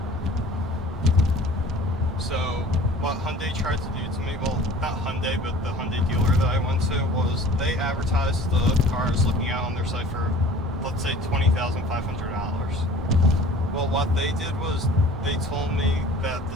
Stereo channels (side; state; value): both; normal; correlation 0.46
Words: So what Hyundai tried to do to me, well, not Hyundai, but the Hyundai dealer that I went to, was they advertised the car I was looking at on their site for, let's say, $20,500. Well, what they did was they told me that